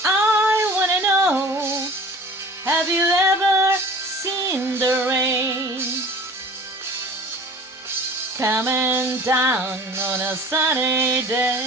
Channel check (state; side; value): normal; both; correlation 0.43